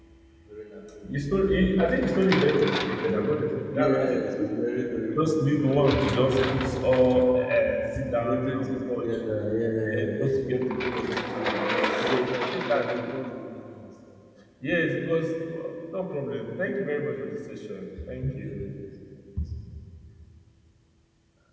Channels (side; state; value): both; identical; correlation 1.00